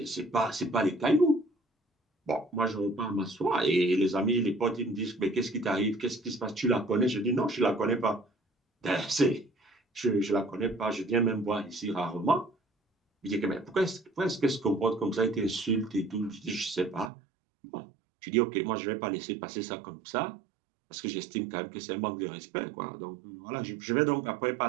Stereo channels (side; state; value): left; drops out; at 17.1 s